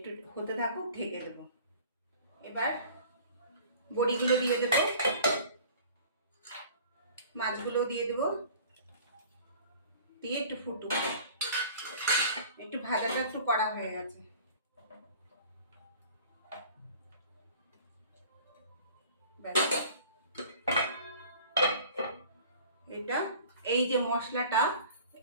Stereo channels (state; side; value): inverted; both; correlation -0.46